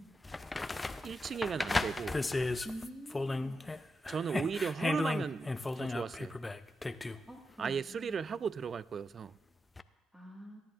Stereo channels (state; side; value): normal; both; correlation 0.88